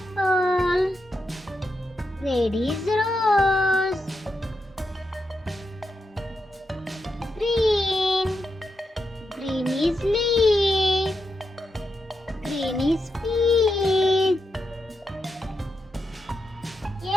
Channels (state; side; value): normal; both; correlation 0.85